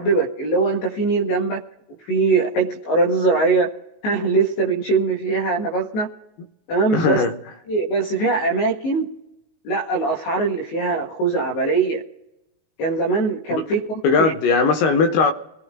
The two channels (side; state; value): right; late; 19 ms